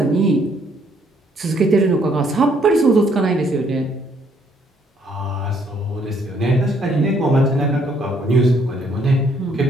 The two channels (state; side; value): normal; both; correlation 0.67